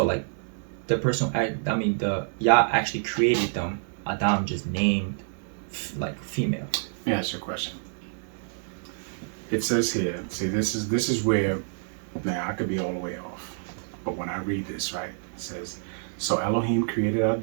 like the person, the Yah actually created them. Adam just named like female. Let me ask you a question. It says here, see, this is where, now I could be all the way off, but when I read this, right, it says, so Elohim created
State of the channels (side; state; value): left; silent; 60 dB below the other